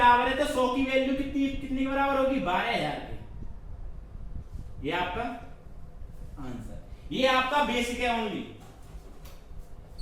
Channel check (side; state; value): both; identical; correlation 1.00